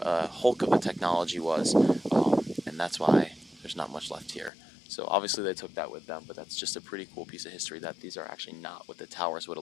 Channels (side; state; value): right; drops out; at 4.5 s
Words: hulk of the technology was, and that's why there's not much left here. So obviously they took that with them, but that's just a pretty cool piece of history that these are actually not what the towers would